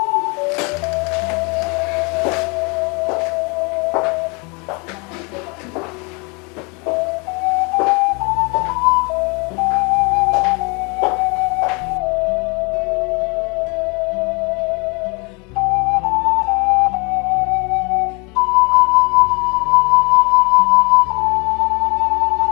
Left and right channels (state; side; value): quieter; right; 31.0 dB